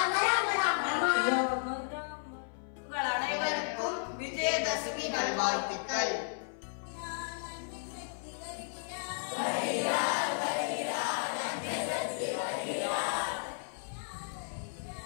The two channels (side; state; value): right; silent; 55 dB below the other